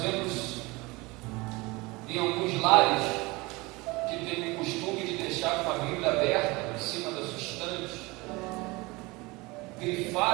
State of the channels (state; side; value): quieter; left; 23.5 dB